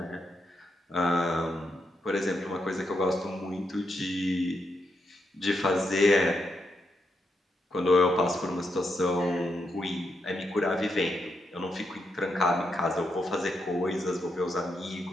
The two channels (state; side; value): normal; both; correlation 0.82